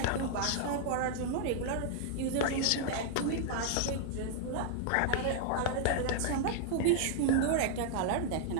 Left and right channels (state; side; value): different; both; correlation -0.01